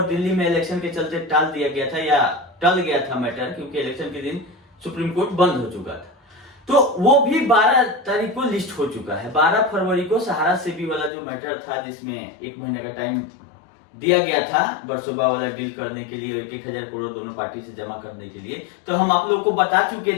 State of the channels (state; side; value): drops out; right; at 11.1 s